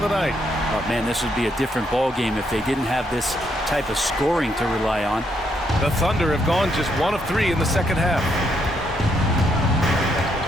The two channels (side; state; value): both; normal; correlation 0.76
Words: the night. Oh, man, this would be a different ball game if they didn't have this type of scoring to rely on. The Thunder have gone just 1 of 3 in the second half.